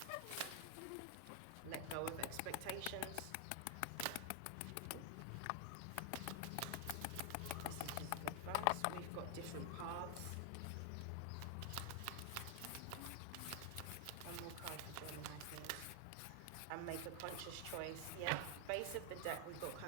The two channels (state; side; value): different; both; correlation 0.00